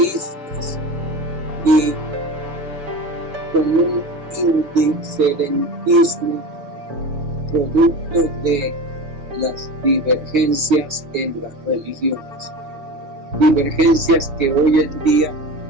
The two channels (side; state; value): left; late; 7.0 ms